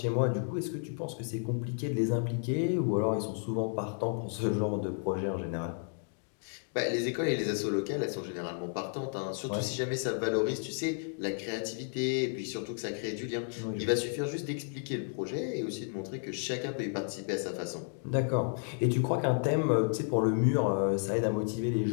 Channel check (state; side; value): silent; right; 56 dB below the other